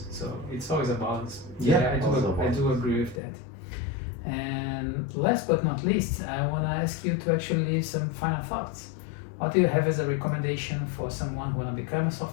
So it's always a balance. Yeah, I do agree with that. And last but not least, I want to ask you to actually leave some final thoughts. What do you have as a recommendation for someone who want to become a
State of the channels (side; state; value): right; drops out; at 3.2 s